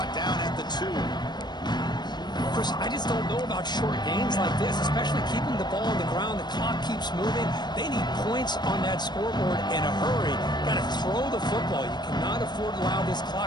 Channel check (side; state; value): right; late; 0.21 ms